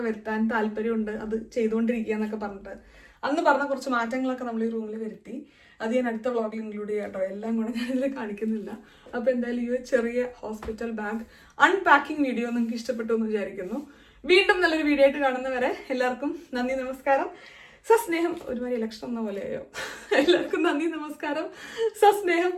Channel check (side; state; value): both; identical; correlation 1.00